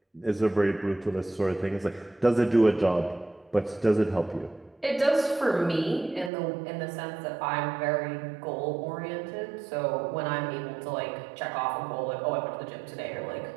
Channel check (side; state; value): left; drops out; at 6.3 s